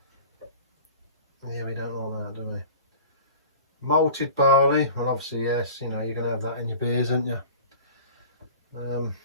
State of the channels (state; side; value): inverted; both; correlation -0.41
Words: Yeah, we don't like that, do we? Malted barley. Well, obviously, yes. You know, you're going to have that in your beers, aren't you?